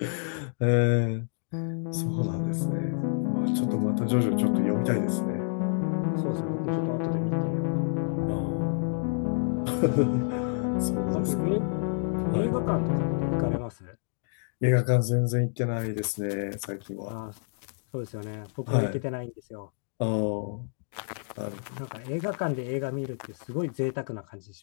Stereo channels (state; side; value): silent; right; digital silence